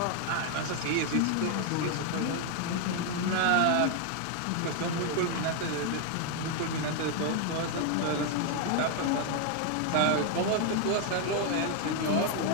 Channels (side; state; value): both; different; correlation 0.01